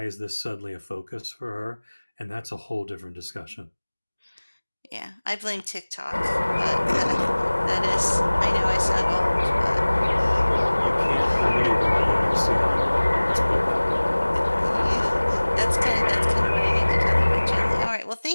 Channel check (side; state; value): both; inverted; correlation -1.00